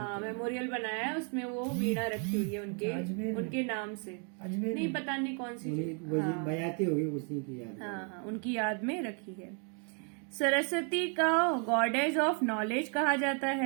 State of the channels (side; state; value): left; quieter; 40.0 dB